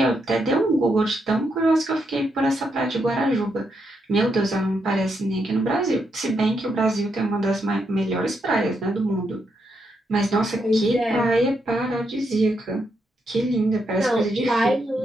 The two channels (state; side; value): normal; both; correlation 0.80